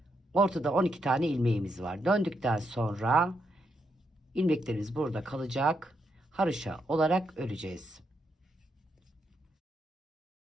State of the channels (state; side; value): normal; both; correlation 0.80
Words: Ortada 12 tane ilmeğimiz var. Döndükten sonra ilmeklerimiz burada kalacak. Haroşa olarak öreceğiz.